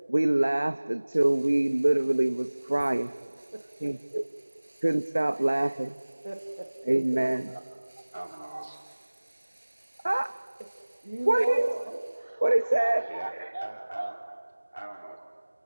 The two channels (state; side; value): inverted; both; correlation -1.00